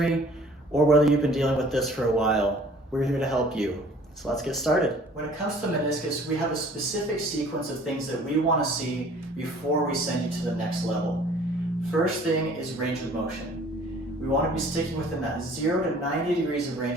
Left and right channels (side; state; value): both; normal; correlation 0.53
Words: or whether you've been dealing with this for a while. We're here to help you. So let's get started. When it comes to meniscus, we have a specific sequence of things that we want to see before we send you to the next level. First thing is range of motion. We want to be sticking within that 0 to 90 degrees of